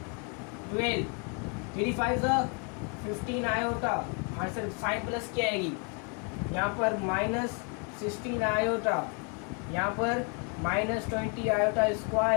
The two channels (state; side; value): quieter; right; 37.1 dB